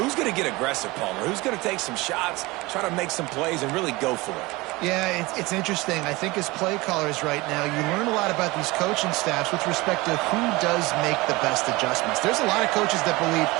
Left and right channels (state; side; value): quieter; left; 22.2 dB